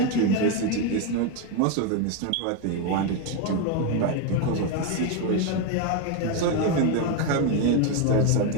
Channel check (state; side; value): different; both; correlation 0.02